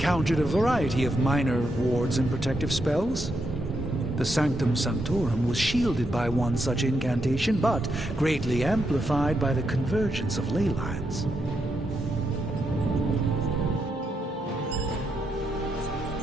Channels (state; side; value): normal; both; correlation 0.82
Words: a variety of minor wards and protective spells. The Sanctum Sanctorum was shielded by one such incantation, but greatly amplified by the convergence of ley lines.